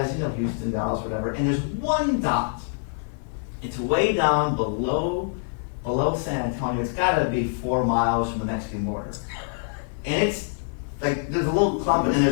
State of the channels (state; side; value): silent; right; digital silence